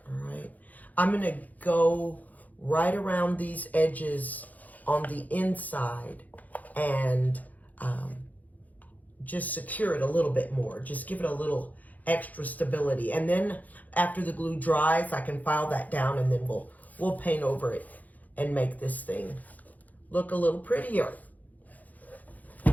all right. I'm gonna go right around these edges on the inside and just secure it a little bit more. Just give it a little extra stability. And then after the glue dries, I can file that down, and then we'll paint over it and make this thing look a little prettier.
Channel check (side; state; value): right; late; 0.079 ms